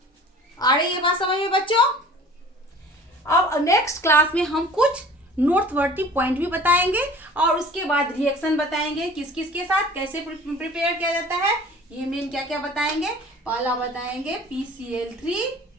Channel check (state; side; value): normal; both; correlation 0.45